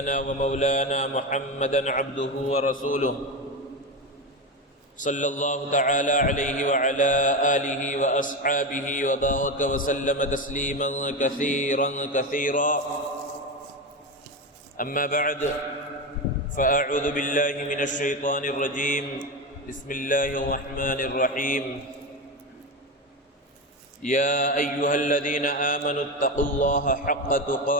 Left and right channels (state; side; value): normal; both; correlation 0.18